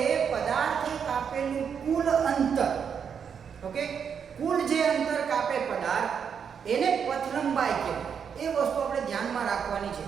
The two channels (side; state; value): left; quieter; 7.2 dB